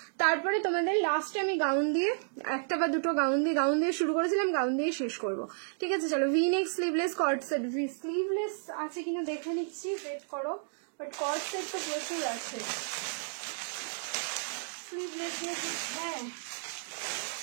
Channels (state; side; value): silent; left; digital silence